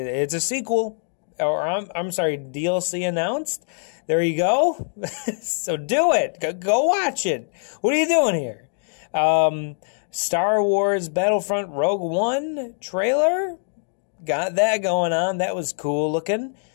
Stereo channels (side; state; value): right; silent; digital silence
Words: a sequel. Or I'm sorry, DLC announced. There you go. So do it. Go watch it. What are you doing here? Star Wars Battlefront Rogue One trailer. Got that going on. That was cool looking.